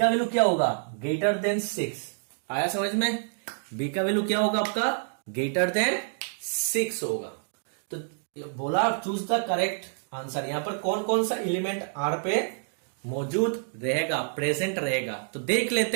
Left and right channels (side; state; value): left; silent; digital silence